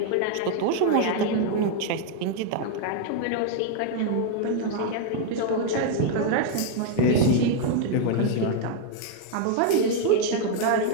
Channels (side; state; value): both; different; correlation 0.00